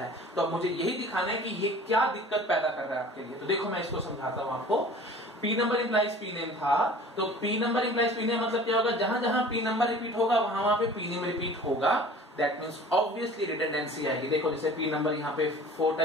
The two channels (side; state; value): both; normal; correlation 0.44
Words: तो अब मुझे यही दिखाना है कि ये क्या दिक्कत पैदा कर रहा है आपके लिए। तो देखो मैं इसको समझाता हूं आपको। P number implies P name था, तो P number implies P name मतलब क्या होगा, जहां जहां पी नंबर रिपीट होगा वहां पे पी नेम रिपीट होगा। दैट मींस ऑब्वियसली रिडंडेंसी आएगी। देखो जैसे पी नंबर यहाँ पे 4